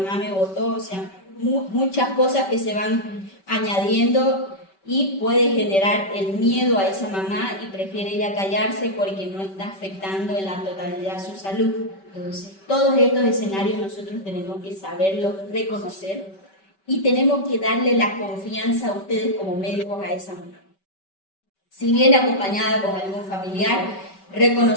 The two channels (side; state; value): right; late; 5.2 ms